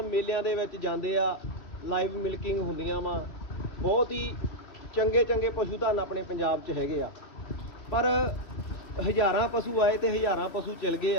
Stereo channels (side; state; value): right; late; 3.5 ms